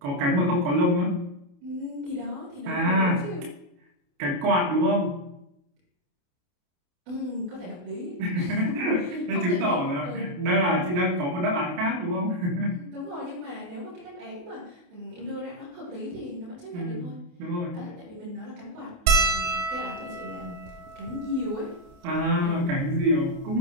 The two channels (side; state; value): left; late; 28 ms